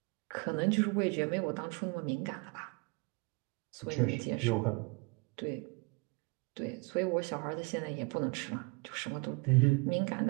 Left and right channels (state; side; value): quieter; left; 29.1 dB